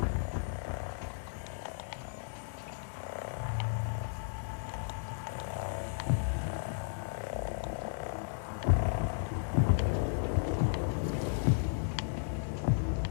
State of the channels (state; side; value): silent; right; digital silence